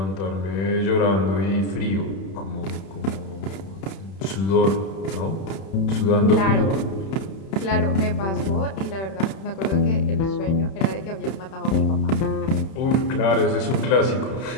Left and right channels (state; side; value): late; right; 31 ms